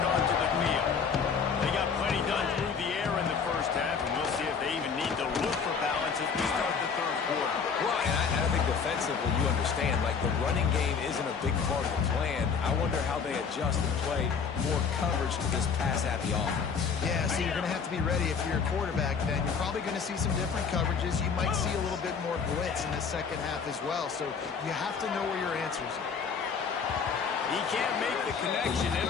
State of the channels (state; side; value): quieter; right; 6.0 dB